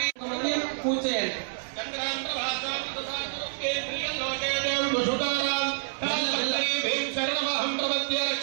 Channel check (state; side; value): silent; left; 56 dB below the other